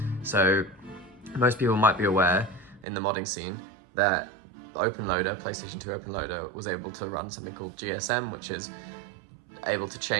So most people might be aware in the modding scene that OpenLoader, PlayStation 2 OpenLoader, was able to run something called GSM, which is able to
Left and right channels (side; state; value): left; drops out; at 2.9 s